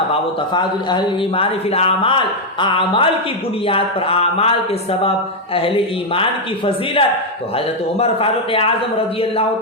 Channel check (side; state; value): both; normal; correlation 0.01